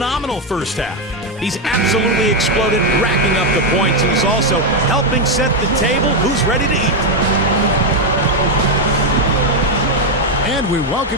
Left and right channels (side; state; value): both; normal; correlation 0.05